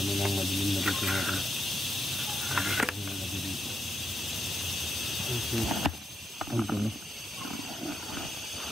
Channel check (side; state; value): both; normal; correlation 0.83